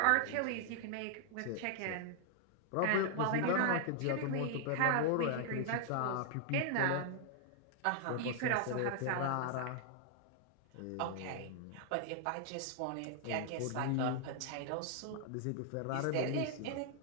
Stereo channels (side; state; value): both; different; correlation 0.00